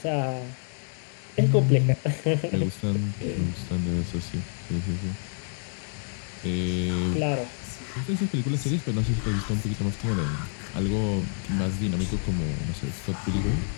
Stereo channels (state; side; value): silent; right; 57 dB below the other